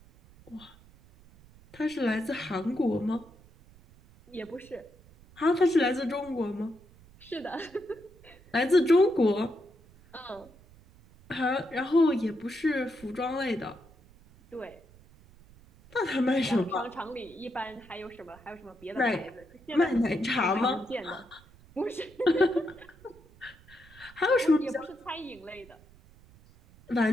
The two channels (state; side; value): noise; right; rumble, 25 dB below the sound